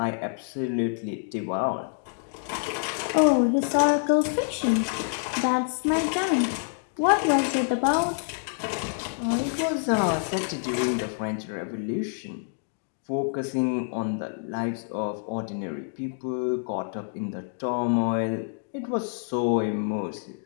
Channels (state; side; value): silent; right; 60 dB below the other